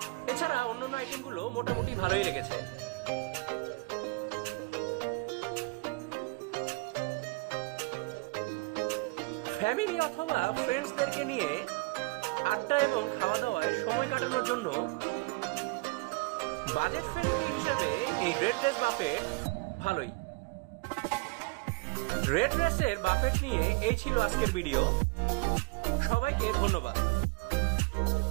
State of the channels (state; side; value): quieter; left; 24.3 dB